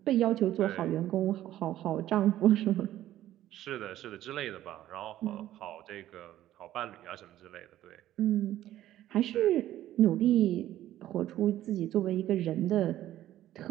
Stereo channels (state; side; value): quieter; left; 13.3 dB